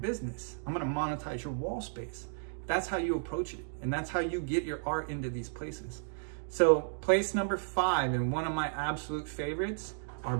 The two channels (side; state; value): left; silent; digital silence